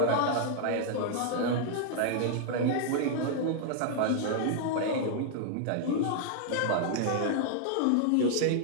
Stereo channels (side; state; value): both; different; correlation -0.01